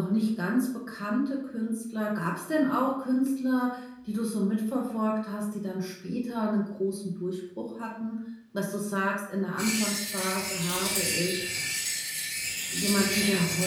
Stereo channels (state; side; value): identical; both; correlation 1.00